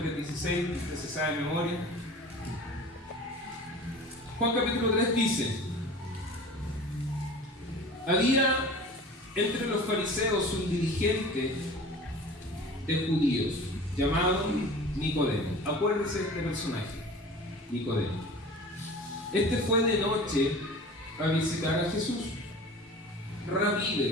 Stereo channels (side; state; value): both; normal; correlation 0.40